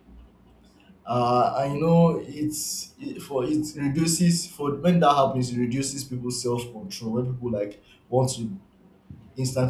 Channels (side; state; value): both; identical; correlation 1.00